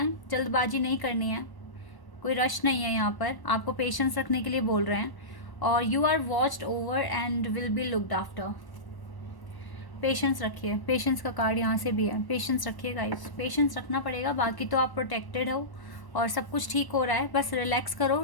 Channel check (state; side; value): late; right; 1.1 ms